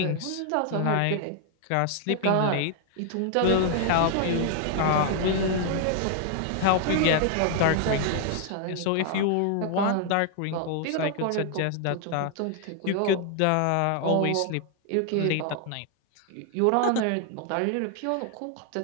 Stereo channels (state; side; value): different; both; correlation 0.00